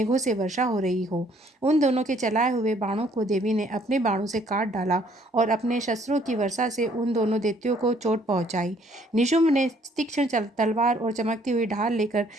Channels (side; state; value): both; normal; correlation 0.63